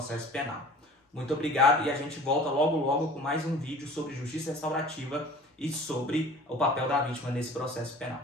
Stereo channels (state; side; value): normal; both; correlation 0.45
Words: penal. Muito obrigado e a gente volta logo com mais um vídeo sobre justiça restaurativa e sobre o papel da vítima nesse processo penal.